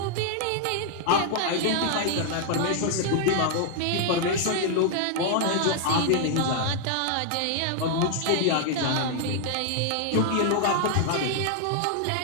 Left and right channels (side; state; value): both; different; correlation 0.00